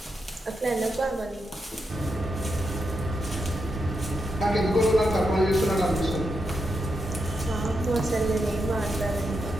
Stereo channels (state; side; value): normal; both; correlation 0.85